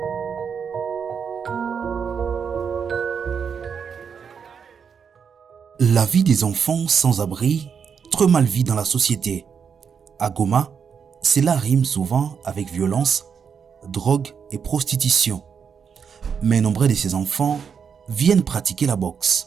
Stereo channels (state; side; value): quieter; left; 6.7 dB